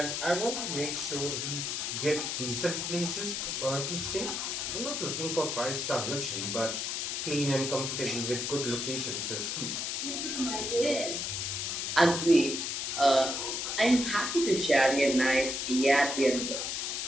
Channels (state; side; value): noise; left; hiss, 2 dB below the sound